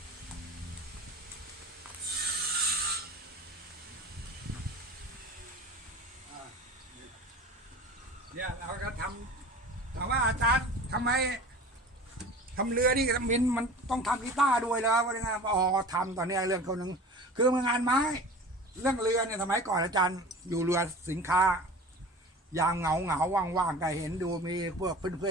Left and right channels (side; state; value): both; normal; correlation 0.38